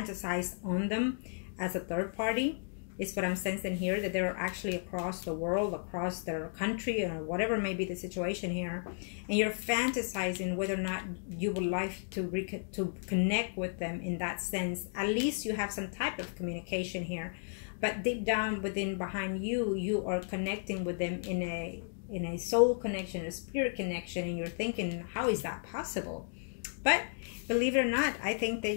on them as a third party. Is what I'm sensing here, that they're actually across the world, across their country, or whatever may be the situation here, and you're fantasizing whether or not you would like to connect with them in that sense. At least you have some type of communication here, but deep down within, behind you, you are connecting with them in a soul connection, a spirit connection, and you're thinking, how is that possible? But believe it or not, I think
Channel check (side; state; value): right; silent; digital silence